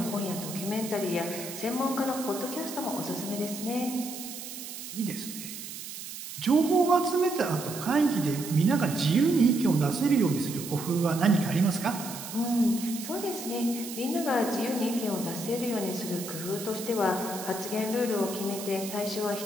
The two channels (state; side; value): noise; right; hiss, 10 dB below the sound